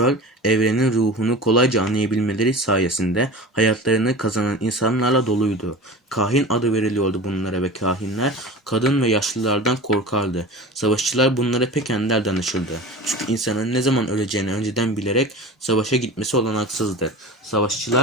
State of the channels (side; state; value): both; normal; correlation 0.34